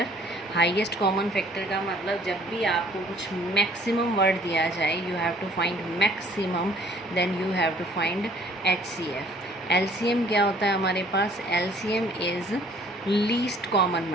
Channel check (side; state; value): both; normal; correlation 0.57